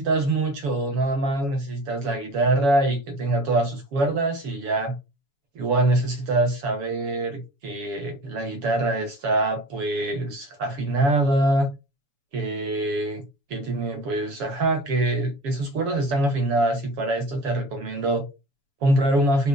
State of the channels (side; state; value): left; late; 7.1 ms